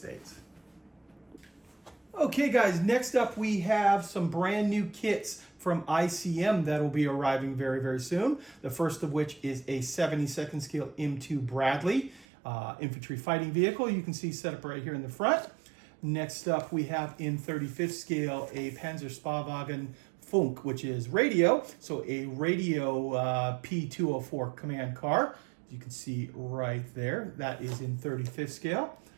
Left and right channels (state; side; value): drops out; left; at 12.2 s